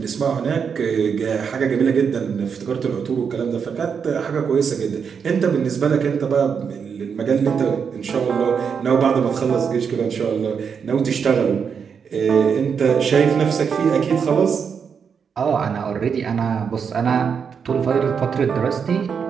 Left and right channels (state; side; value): quieter; left; 6.6 dB